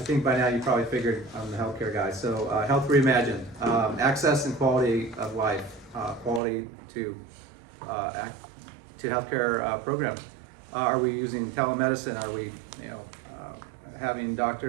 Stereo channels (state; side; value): drops out; left; at 6.4 s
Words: think by now you probably figured I'm the healthcare guy. So, Health Reimagined, access and quality of life, quality to healthcare programs. Are we using telemedicine? Are we, having